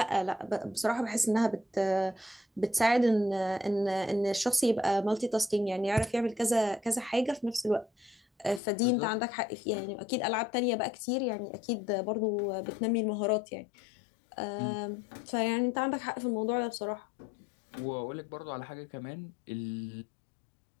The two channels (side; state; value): right; drops out; at 8.6 s